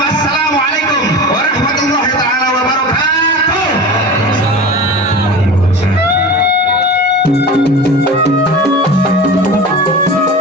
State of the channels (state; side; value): normal; both; correlation 0.32